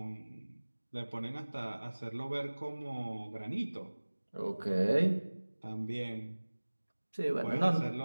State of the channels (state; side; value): inverted; both; correlation -1.00